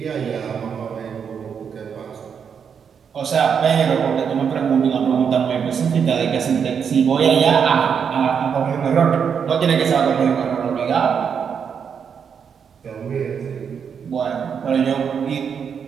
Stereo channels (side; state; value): left; quieter; 7.0 dB